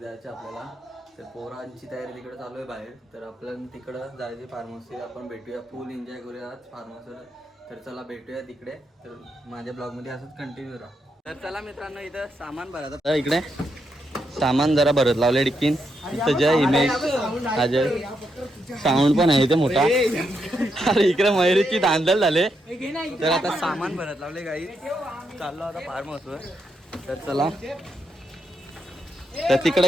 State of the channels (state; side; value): normal; both; correlation 0.81